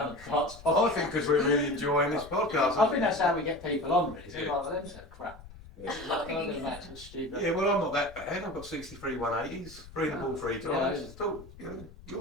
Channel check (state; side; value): noise; left; rumble, 18 dB below the sound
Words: have darts. I think because we're really enjoying this podcast. I think that's how we get people on, really. So Yeah. like, well, them said crap. Yeah. Like, I'm going back to the stupid. Yeah, well, I'm not that bad. I've got 63 180s, 3 the ball 3 times. Yeah. Still, you know,